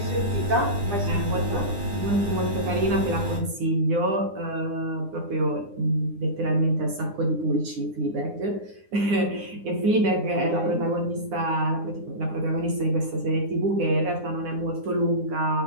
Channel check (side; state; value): left; late; 9.8 ms